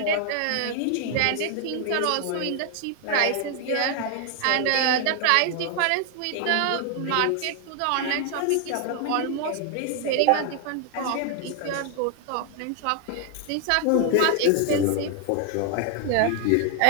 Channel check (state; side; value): different; both; correlation 0.00